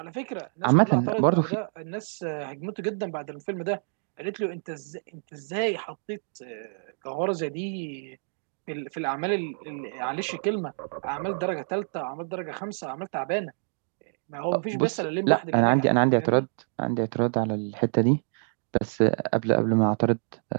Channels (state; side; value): silent; left; digital silence